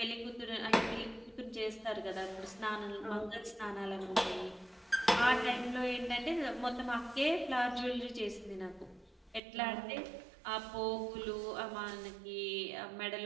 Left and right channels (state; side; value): drops out; left; at 9.4 s